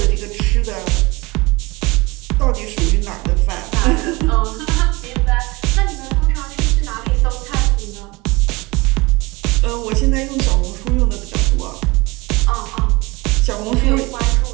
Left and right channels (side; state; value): left; quieter; 23.8 dB